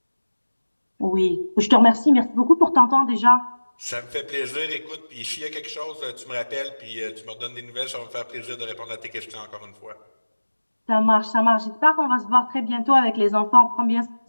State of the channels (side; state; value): both; inverted; correlation -1.00